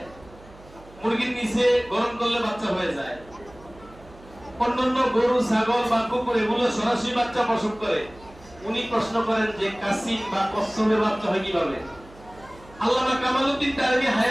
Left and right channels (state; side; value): noise; right; hum, 22 dB below the sound